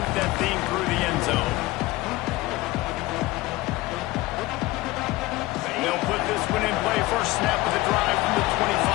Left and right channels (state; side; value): quieter; right; 19.0 dB